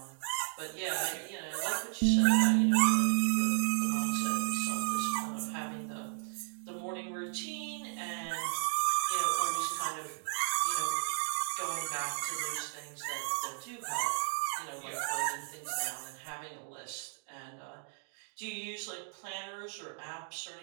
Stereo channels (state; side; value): silent; left; digital silence